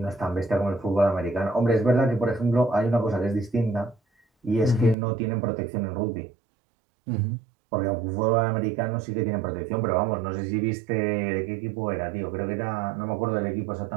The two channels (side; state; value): left; drops out; at 5.0 s